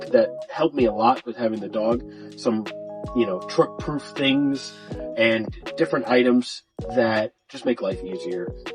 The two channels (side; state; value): both; identical; correlation 1.00